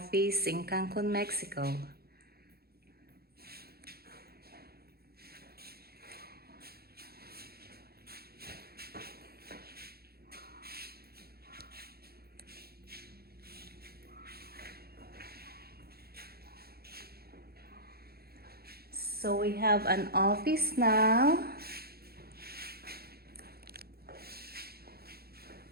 in Cancun, Mexico. So we have an office now.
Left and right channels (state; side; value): late; left; 0.45 ms